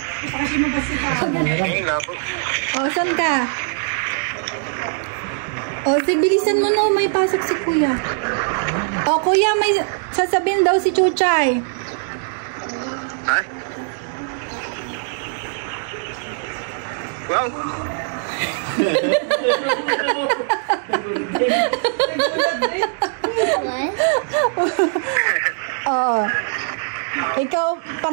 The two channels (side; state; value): left; silent; 65 dB below the other